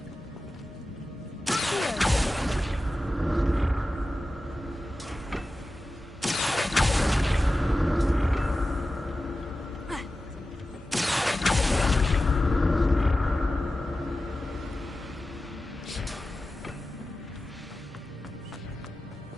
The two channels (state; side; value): normal; both; correlation 0.94